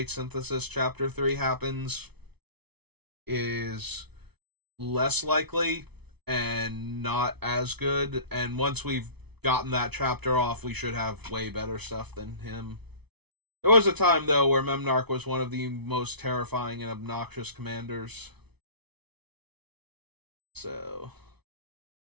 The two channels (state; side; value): late; left; 0.99 ms